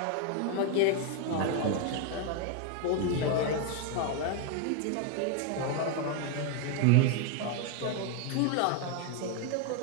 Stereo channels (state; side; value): different; both; correlation 0.01